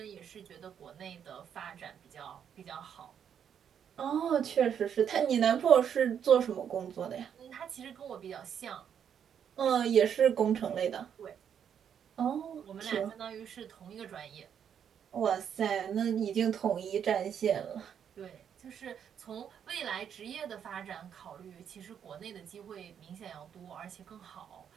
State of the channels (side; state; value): left; quieter; 8.3 dB